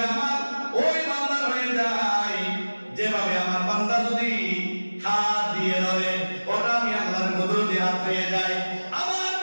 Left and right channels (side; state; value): both; inverted; correlation -1.00